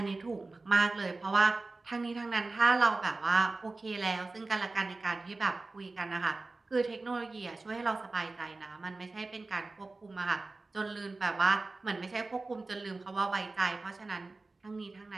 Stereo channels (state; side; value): quieter; left; 3.4 dB